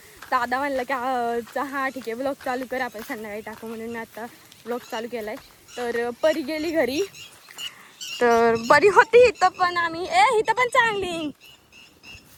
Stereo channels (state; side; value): identical; both; correlation 1.00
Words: दादा म्हणलं की हा ठीक आहे ब्लॉग चालू कर, आपण संध्याकाळी टाकू, म्हणून मी आता ब्लॉग चालू केला आहे. तर परी गेली घरी, तर बरी होती इथं पण आम्ही इथं पण चांगली.